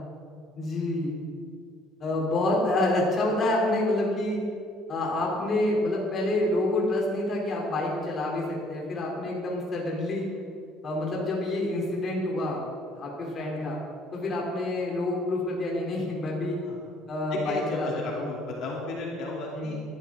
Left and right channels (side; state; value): both; normal; correlation 0.61